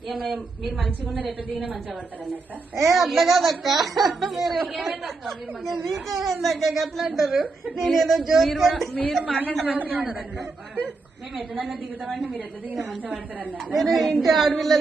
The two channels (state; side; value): quieter; left; 3.8 dB